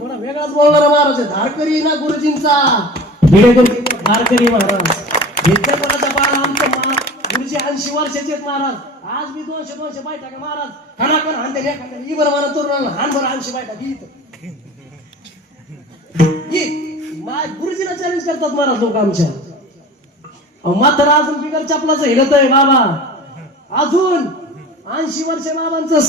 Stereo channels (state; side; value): normal; both; correlation 0.38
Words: वेगळाच बोलणार महाराज. धारकरी ना गुरुजींचा धारकरी महाराज. विद्यापीठाचा बाळ आमचं गुरुजी 80 वर्षाचे आहेत महाराज. आज मी 200 बायटा का महाराज, खानाकन हानते एखाद्या ही बरं मला तरुणाला हान बरं 80 बायटा गुरुजीला चॅलेंज करतात महाराज लोक आमच्या. मात्र अजून बिगर चपलाचं हिरत आहे बाबा, अजून 80 वर्ष बाबांचं